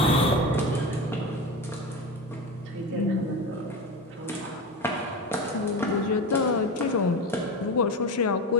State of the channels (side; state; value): both; normal; correlation 0.23